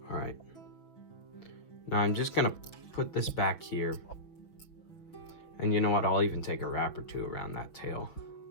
All right. Now I'm just gonna put this back here. And you know what? I'll even take a wrap or two around that tail,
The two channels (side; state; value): right; late; 6.1 ms